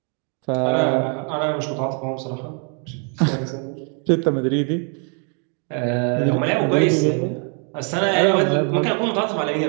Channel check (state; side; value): quieter; left; 39.8 dB